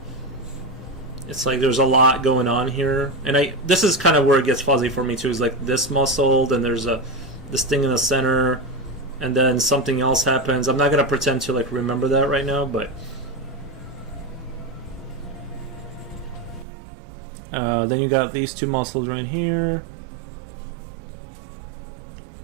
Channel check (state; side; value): drops out; left; at 16.7 s